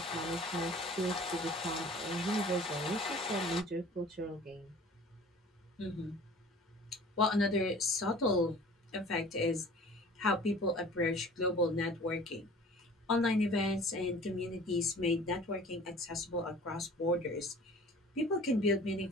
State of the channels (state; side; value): normal; both; correlation 0.46